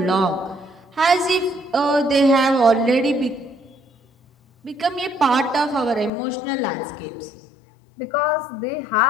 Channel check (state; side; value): drops out; right; at 6.1 s